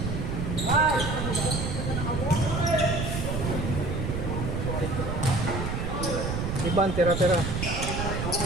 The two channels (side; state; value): right; noise; rumble, 2 dB below the sound